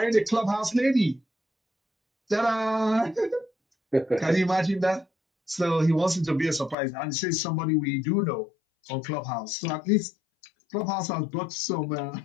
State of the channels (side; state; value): right; drops out; at 6.8 s